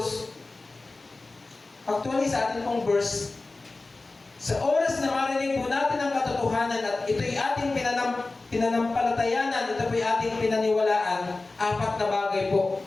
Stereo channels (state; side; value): quieter; right; 3.4 dB